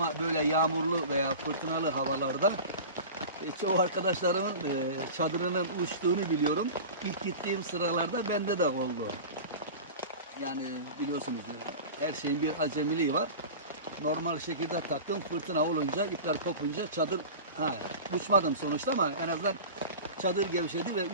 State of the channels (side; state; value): both; inverted; correlation -0.33